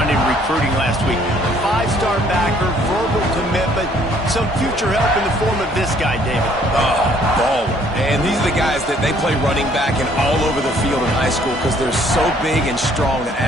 in recruiting last week. A 5-star backer, verbal commitment, some future help in the form of this guy, David. Oh, baller. And these are the guys that they play running back and all over the field in high school because they're so big and strong and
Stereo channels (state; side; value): normal; both; correlation 0.62